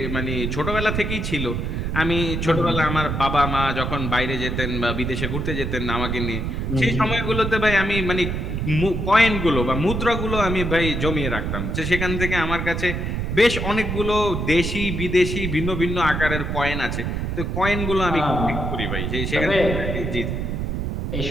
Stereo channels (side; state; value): right; noise; rumble, 2 dB below the sound